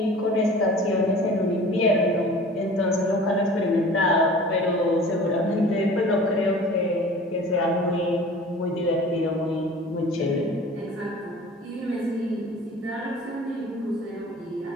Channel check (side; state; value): both; normal; correlation 0.44